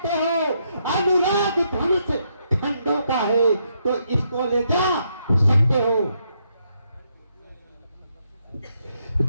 हो। अनुराग धनुष खंडों का है तो इसको ले जा सकते हो।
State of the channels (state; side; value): inverted; both; correlation -0.77